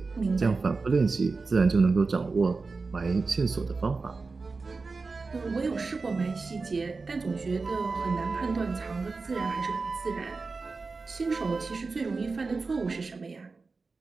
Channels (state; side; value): quieter; left; 4.1 dB